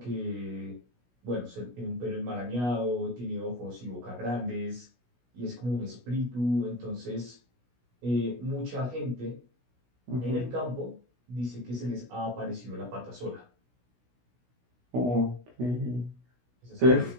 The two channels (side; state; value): left; late; 16 ms